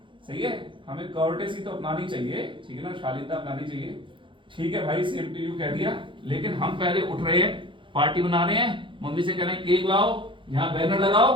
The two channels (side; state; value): left; late; 0.24 ms